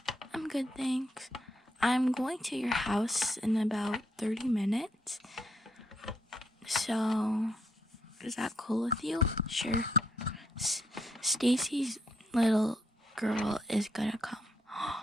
I'm good, thanks. I'm going to your house in about 30 minutes. So, is that cool with you? Sure. Stacy's little girl is gonna come.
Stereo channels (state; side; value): normal; both; correlation 0.76